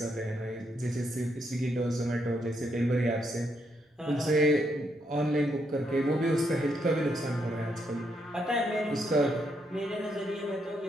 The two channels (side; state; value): both; normal; correlation 0.77